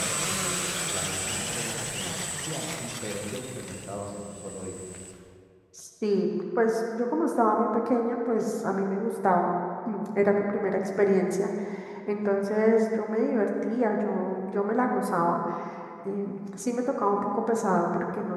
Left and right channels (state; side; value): identical; both; correlation 1.00